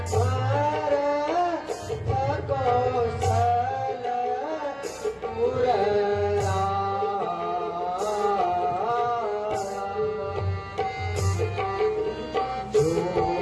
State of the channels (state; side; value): identical; both; correlation 1.00